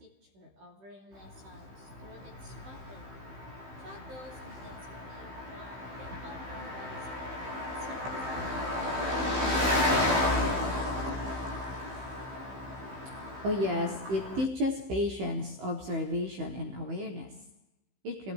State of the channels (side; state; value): left; late; 15 ms